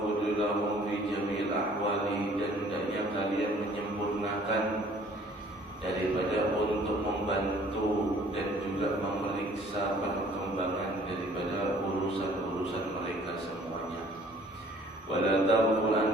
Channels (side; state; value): both; normal; correlation 0.55